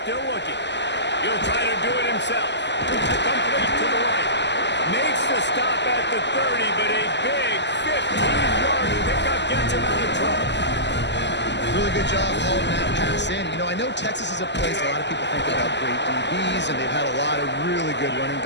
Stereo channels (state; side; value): late; right; 0.51 ms